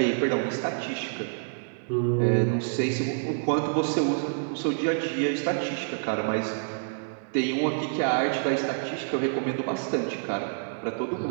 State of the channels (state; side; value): silent; left; digital silence